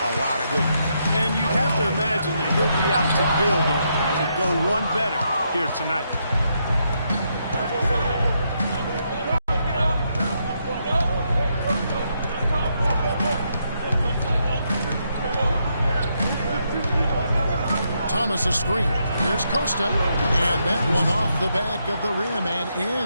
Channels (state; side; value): inverted; both; correlation -0.79